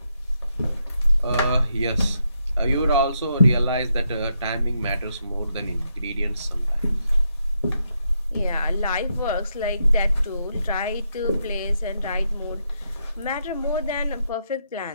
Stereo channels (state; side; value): inverted; both; correlation -0.80